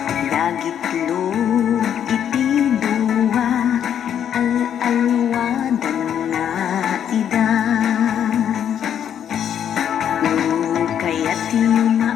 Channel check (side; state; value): right; quieter; 9.2 dB